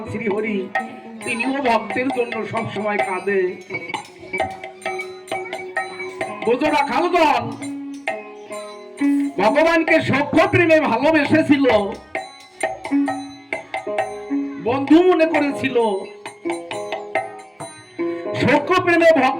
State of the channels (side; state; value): both; identical; correlation 1.00